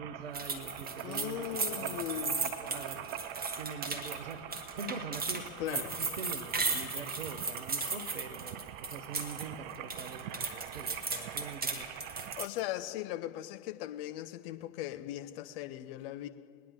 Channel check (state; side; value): normal; both; correlation 0.01